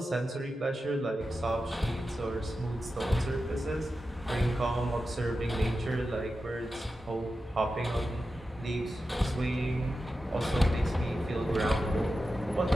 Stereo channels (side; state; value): both; normal; correlation 0.91